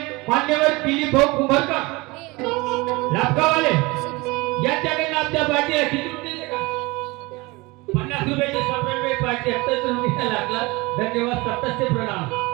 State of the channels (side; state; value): left; quieter; 23.6 dB